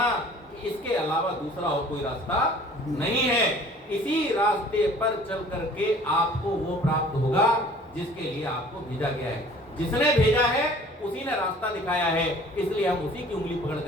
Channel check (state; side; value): normal; both; correlation 0.50